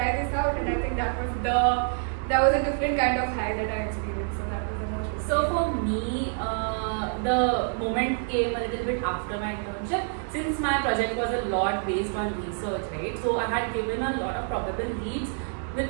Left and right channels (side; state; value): left; silent; 57 dB below the other